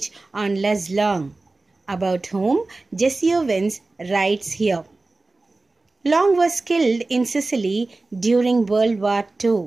on Les Long, about whom Jesse Owens writes here. Long was killed in Sicily during World War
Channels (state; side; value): quieter; left; 3.3 dB